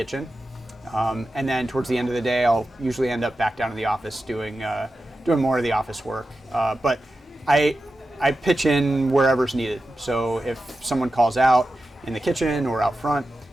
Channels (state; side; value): normal; both; correlation 0.92